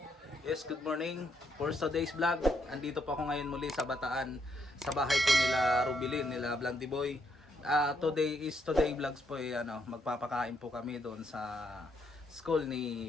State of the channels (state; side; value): normal; both; correlation 0.75